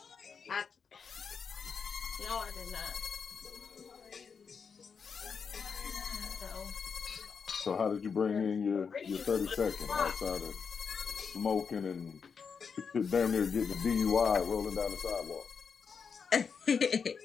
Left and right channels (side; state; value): right; quieter; 6.0 dB